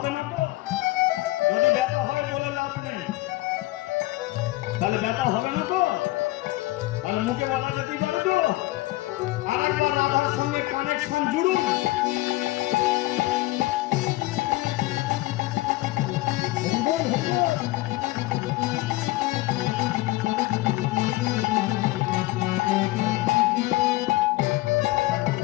না তো যদি ব্যথা হয় বলে লাভ নেই তাহলে ব্যথা হবে না তো তাহলে মুখে বলা যেতেই পারে তো আরেকবার রাধার সঙ্গে কানেকশন জুড়ুন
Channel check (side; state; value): right; quieter; 18.8 dB